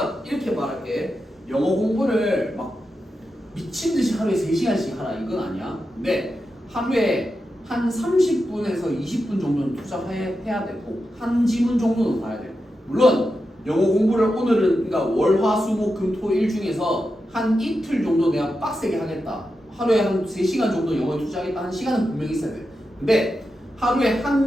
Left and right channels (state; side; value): normal; both; correlation 0.89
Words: 이렇게 말할게. 영어 공부를 막 미친 듯이 하루에 3시간씩 하라 이건 아니야. 근데 하루에 한 30분에서 20분 정도는 투자해야 되고 한 지문 정도는 봐야 돼. 물론 영어 공부를 오늘은 그러니까 월, 화, 수, 목, 금, 토, 일 중에서 한 이틀 정도 내가 빡세게 하겠다. 하루에 한 3시간 정도 영어에 투자하겠다 하는 시간은 분명히 있어야 돼. 근데 하루에